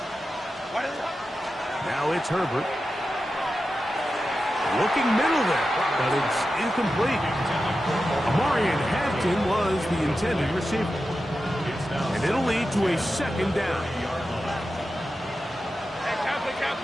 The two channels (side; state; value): both; normal; correlation 0.91